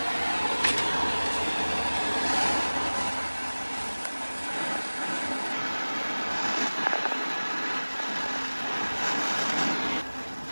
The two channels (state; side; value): inverted; both; correlation -1.00